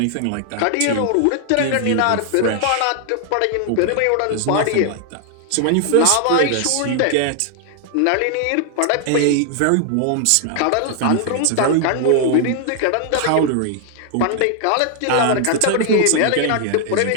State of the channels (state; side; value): different; both; correlation 0.00